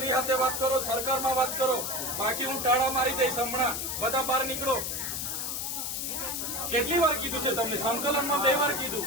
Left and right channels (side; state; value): left; noise; hiss, 3 dB below the sound